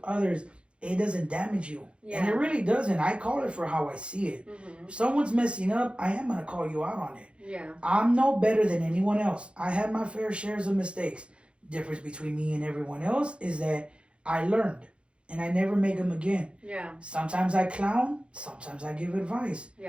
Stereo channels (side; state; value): left; late; 0.058 ms